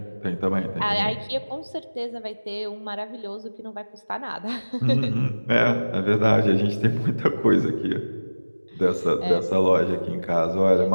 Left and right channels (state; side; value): inverted; both; correlation -1.00